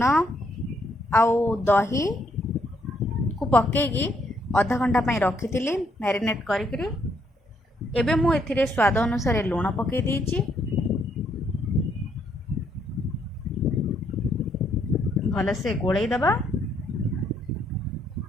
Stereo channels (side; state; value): both; normal; correlation 0.72